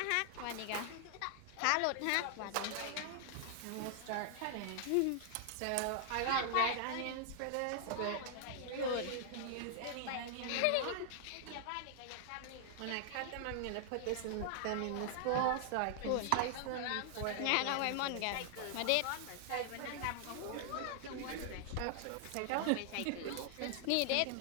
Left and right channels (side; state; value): both; different; correlation 0.00